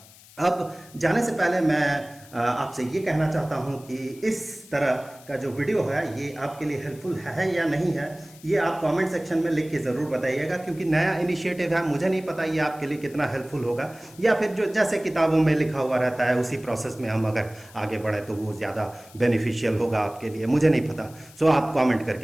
अब जाने से पहले मैं आपसे ये कहना चाहता हूँ कि इस तरह का जो वीडियो है ये आपके लिए हेल्पफुल है या नहीं है, ये आप कमेंट सेक्शन में लिख के ज़रूर बताइएगा, क्योंकि नया इनिशिएटिव है, मुझे नहीं पता ये आपके लिए कितना हेल्पफुल होगा, या फिर जो जैसे किताबों में लिखा हुआ रहता है उसी प्रोसेस में हम अगर आगे बढ़े तो वो ज़्यादा बेनिफिशियल होगा आपके लिए, मुझे नहीं पता। सो आप कॉमेंट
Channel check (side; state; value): left; noise; hiss, 23 dB below the sound